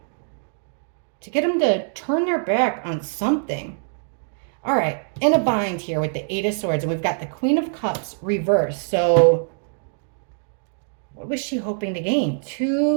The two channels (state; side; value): silent; left; digital silence